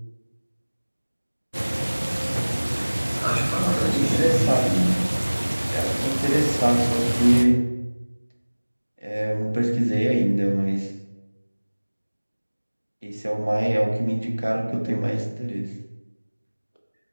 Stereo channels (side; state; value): both; inverted; correlation -1.00